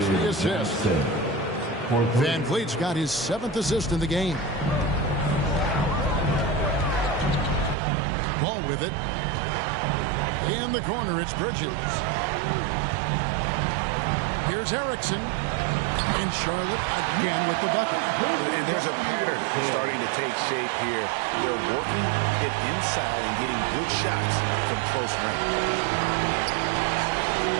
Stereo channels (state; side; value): drops out; left; at 7.8 s